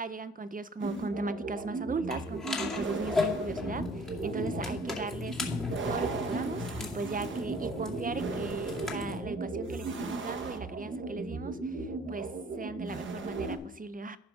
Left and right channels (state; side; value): normal; both; correlation 0.54